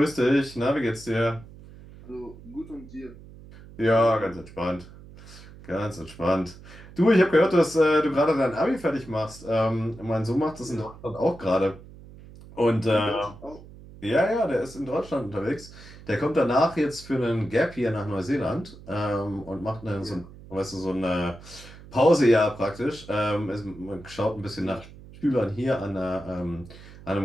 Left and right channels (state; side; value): noise; right; hum, 19 dB below the sound